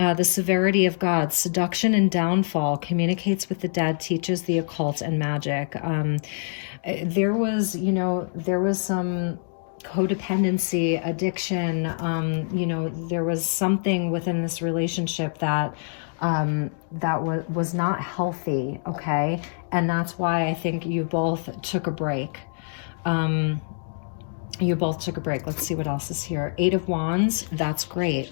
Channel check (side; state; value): right; silent; digital silence